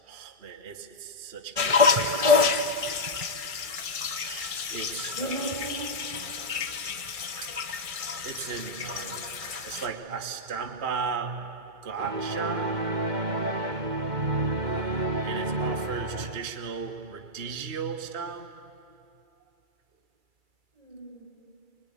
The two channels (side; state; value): left; late; 2.3 ms